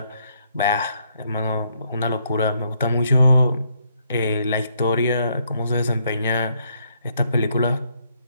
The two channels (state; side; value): inverted; both; correlation -0.73